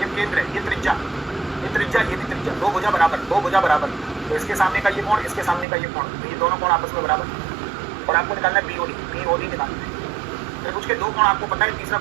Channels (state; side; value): drops out; left; at 5.7 s